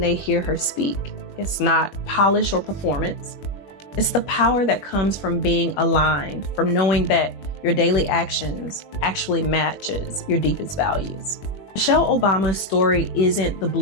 they hear her speak. It's not polish or performance. It's the power that comes from being aligned, from knowing that your daily actions actually matches your deepest values. Michelle Obama's story isn't the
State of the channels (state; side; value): late; right; 21 ms